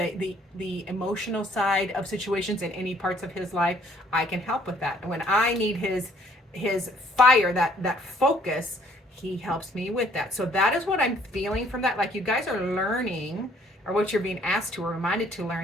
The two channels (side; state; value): both; normal; correlation 0.62